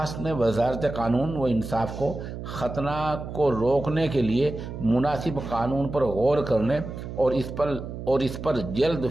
میں وزارت قانون و انصاف کو ختنہ کو روکنے کے لیے مناسب قانون پر غور کرنے اور اس پر جلد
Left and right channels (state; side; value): noise; right; hum, 9 dB below the sound